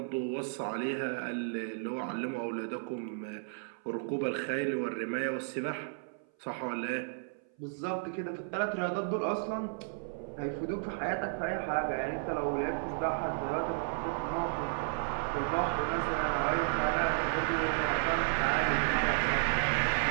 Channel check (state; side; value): silent; left; 56 dB below the other